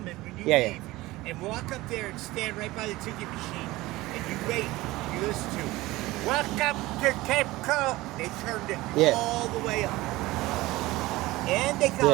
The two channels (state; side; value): quieter; left; 19.0 dB